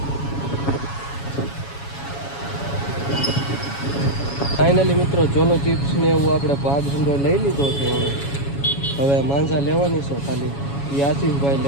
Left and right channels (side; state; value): right; late; 7.2 ms